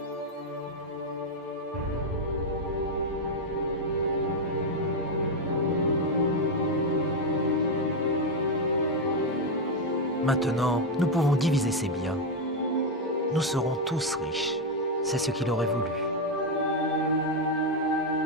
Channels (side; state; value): both; normal; correlation 0.04